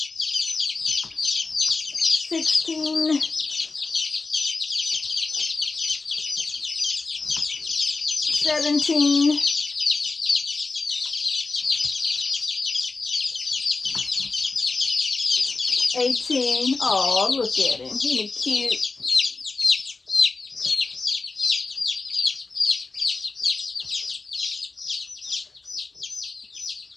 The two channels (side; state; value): right; quieter; 3.9 dB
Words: 16, 17, 18. Oh, look at him. Isn't he cute?